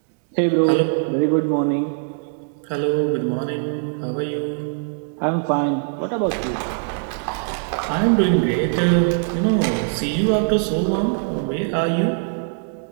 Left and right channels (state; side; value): silent; left; digital silence